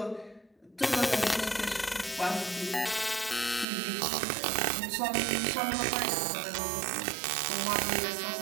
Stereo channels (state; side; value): drops out; left; at 3.7 s